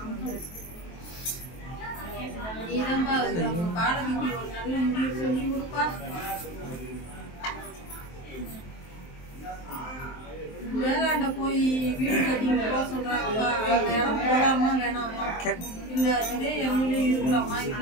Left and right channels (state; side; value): late; right; 23 ms